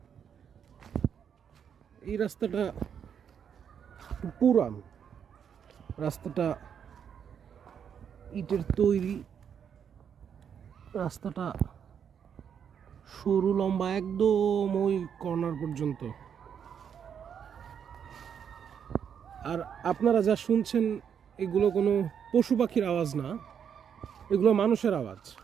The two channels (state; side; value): quieter; left; 7.9 dB